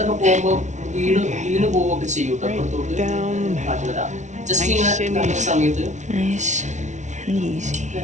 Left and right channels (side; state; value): left; late; 0.35 ms